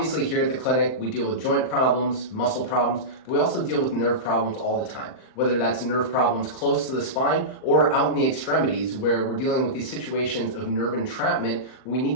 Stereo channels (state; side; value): late; right; 39 ms